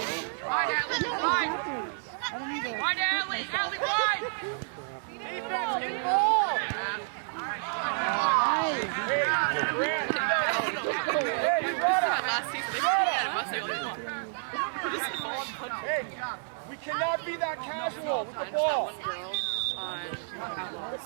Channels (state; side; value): silent; left; 58 dB below the other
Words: Wide, Allie, wide! Defense, in ball. Hey, we cannot be that casual with the ball.